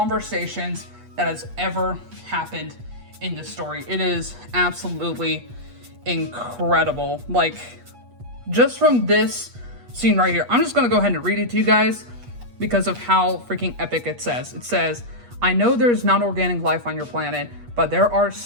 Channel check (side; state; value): left; late; 8.3 ms